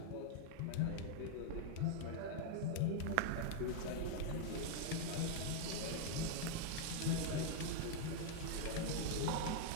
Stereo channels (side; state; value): both; different; correlation 0.00